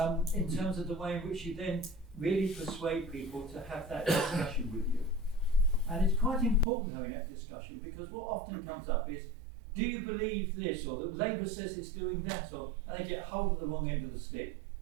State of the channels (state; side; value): drops out; left; at 6.7 s